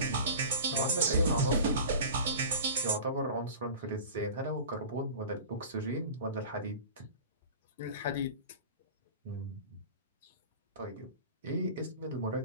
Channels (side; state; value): both; inverted; correlation -0.36